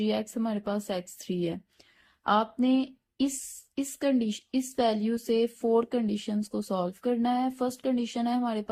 एक्स हमारे पास x3 है। आपने इस इस वैल्यू से 4 कंडीशंस को सॉल्व करना है। फर्स्ट कंडीशन है हमारे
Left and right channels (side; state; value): both; identical; correlation 1.00